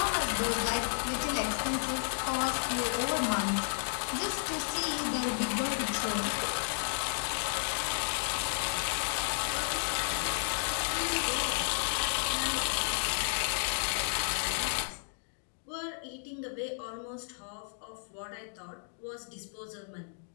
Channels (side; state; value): right; silent; digital silence